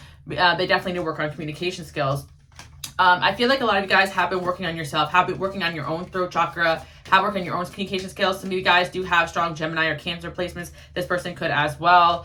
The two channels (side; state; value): both; identical; correlation 1.00